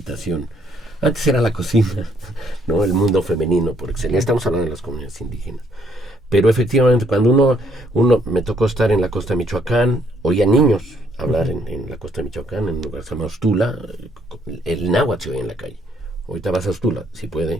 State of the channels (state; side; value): normal; both; correlation 0.68